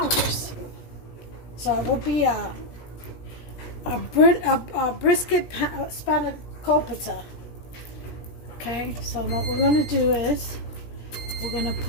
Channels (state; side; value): late; right; 17 ms